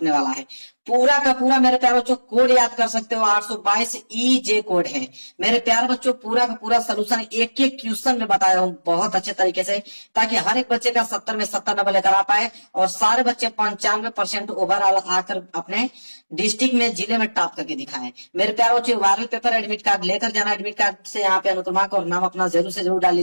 वाला है। पूरा का पूरा मेरे प्यारे बच्चों कोड याद कर सकते हो, 822 EJ कोड है। मेरे प्यारे बच्चों, पूरा का पूरा सोल्यूशन एक एक क्वेश्चन में बताया हूं बहुत अच्छे तरीके से, ताकि हर एक बच्चे का 70 में 70 नंबर लेकर आ पाए और सारे बच्चे 95% ओवरऑल आकर अपने डिस्ट्रिक्ट में, जिले में टॉप करके दिखाएं। मेरे प्यारे बच्चों, वायरल पेपर एडमिट कार्ड लेकर जाना, एडमिट कार्ड से यहाँ पे अनुक्रमा और नाम अपना जरूर से जरूर डाल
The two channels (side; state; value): both; inverted; correlation -1.00